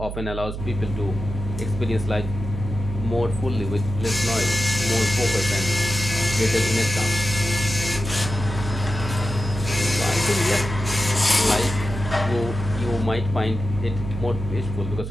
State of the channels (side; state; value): right; noise; hum, 7 dB below the sound